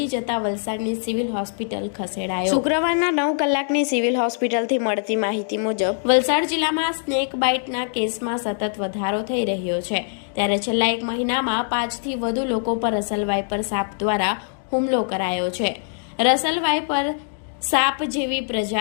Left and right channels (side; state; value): right; silent; digital silence